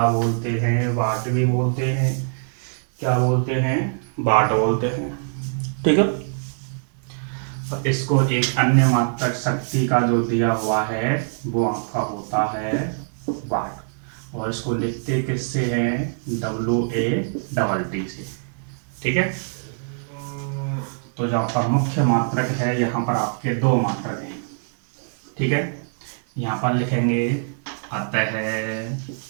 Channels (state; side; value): silent; left; digital silence